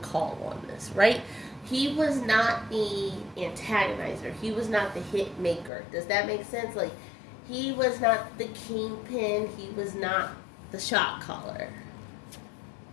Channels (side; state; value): right; drops out; at 5.7 s